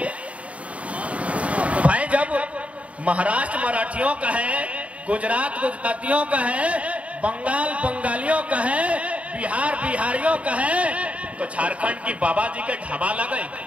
भाई। जब महाराष्ट्र मराठियों का है, गुजरात गुजरातियों का है, बंगाल बंगालियों का है, बिहार बिहारियों का है, तो झारखंड की बाबा जी के ढाबा लगे।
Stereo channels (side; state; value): left; late; 0.065 ms